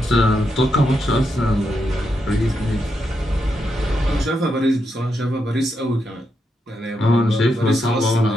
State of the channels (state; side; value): normal; both; correlation 0.83